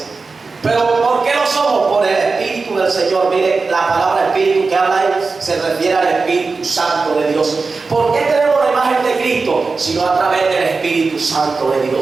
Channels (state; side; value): quieter; left; 4.2 dB